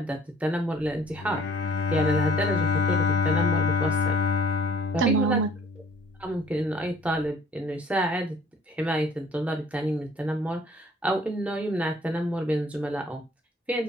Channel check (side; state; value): both; normal; correlation 0.56